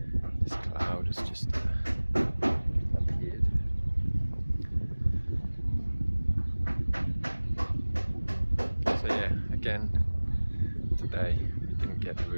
this cloud has just appeared. So yeah, again today we didn't get the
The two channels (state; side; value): inverted; both; correlation -1.00